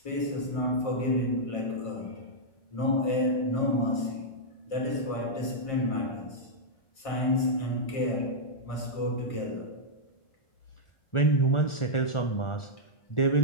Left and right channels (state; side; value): late; right; 1.4 ms